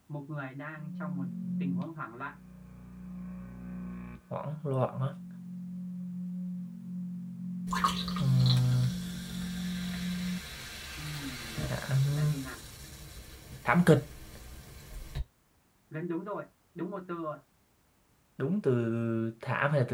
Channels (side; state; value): both; identical; correlation 1.00